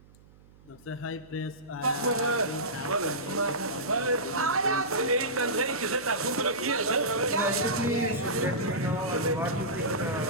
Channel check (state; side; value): noise; right; hum, 26 dB below the sound